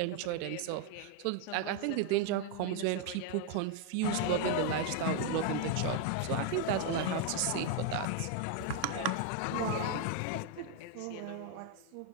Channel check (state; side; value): different; both; correlation 0.01